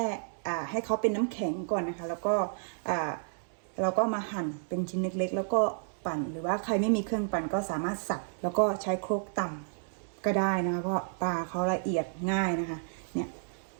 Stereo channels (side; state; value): left; silent; digital silence